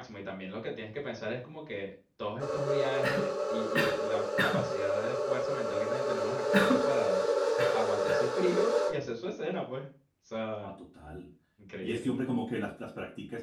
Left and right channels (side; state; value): both; identical; correlation 1.00